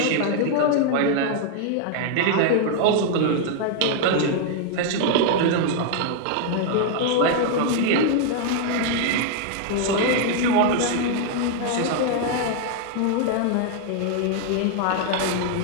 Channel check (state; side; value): different; both; correlation 0.00